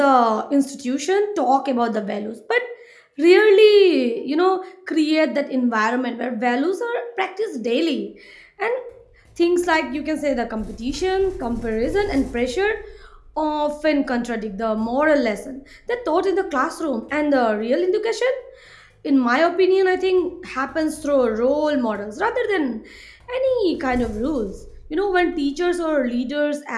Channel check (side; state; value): both; identical; correlation 1.00